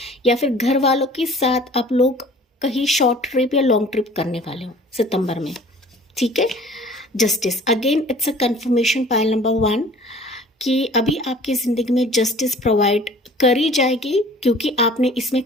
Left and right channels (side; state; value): both; normal; correlation 0.48